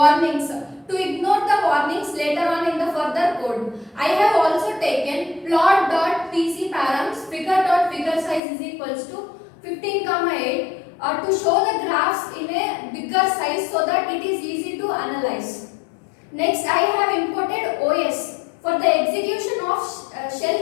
to ignore the warnings later on in the further code. I have also taken plot.pc params figure.figure size is equals to 15,8 to show the graphs in a bigger size so that it is easy to analyze. Next, I have imported OS for the execution of shell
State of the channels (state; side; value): drops out; right; at 8.4 s